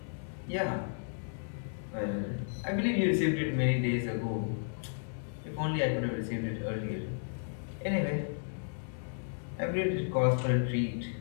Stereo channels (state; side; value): silent; right; digital silence